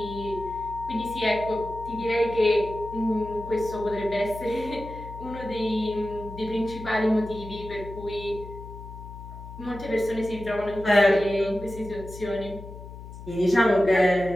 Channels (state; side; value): noise; left; hum, 13 dB below the sound